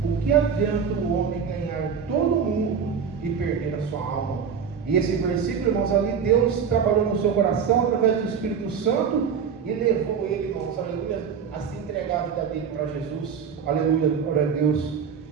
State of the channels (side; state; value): left; quieter; 6.9 dB